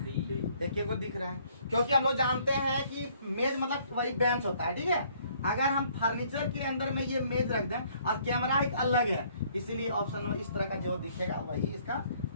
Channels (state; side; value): inverted; both; correlation -0.62